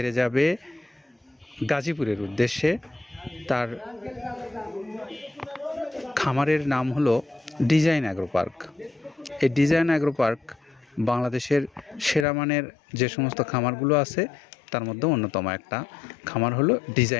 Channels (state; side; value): drops out; right; at 12.2 s